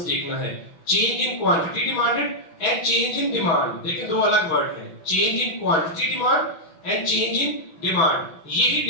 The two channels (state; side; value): late; right; 6.0 ms